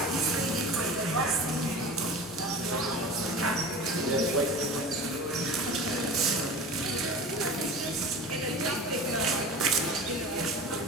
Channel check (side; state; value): both; normal; correlation 0.35